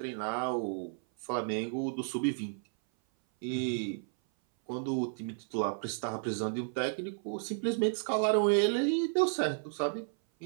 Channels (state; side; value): silent; left; 56 dB below the other